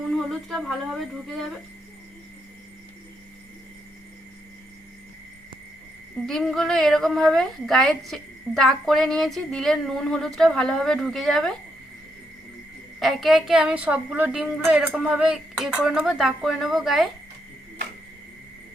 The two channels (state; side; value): normal; both; correlation 0.78